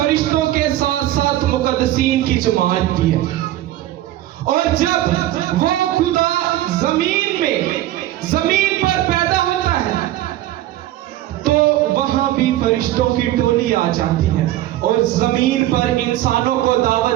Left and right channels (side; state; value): left; quieter; 14.5 dB